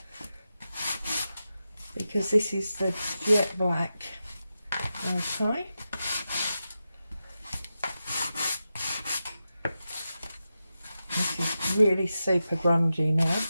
Because this is the jet black. Okay. This is really super grungy now.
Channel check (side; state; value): both; inverted; correlation -0.90